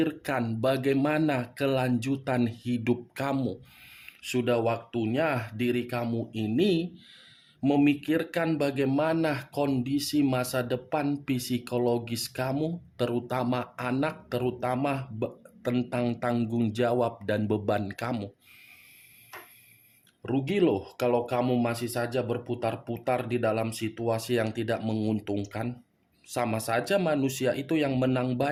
bagaimana kelanjutan hidup kamu. Sudah waktunya diri kamu ini memikirkan bagaimana kondisi masa depan psikologis kamu, terutama anak, terutama tentang tanggung jawab dan beban kamu. Rugi loh kalau kamu masih saja berputar-putar di dalam situasi yang tidak menguntungkan. Sama saja manusia itu yang menang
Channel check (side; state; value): both; identical; correlation 1.00